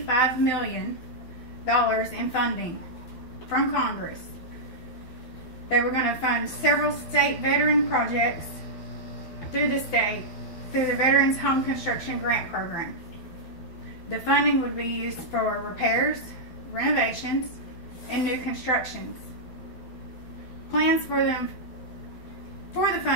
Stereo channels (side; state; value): right; late; 12 ms